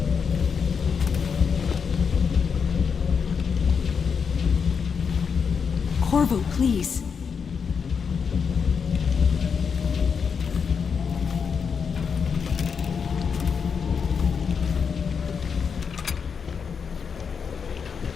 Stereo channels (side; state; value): right; quieter; 6.2 dB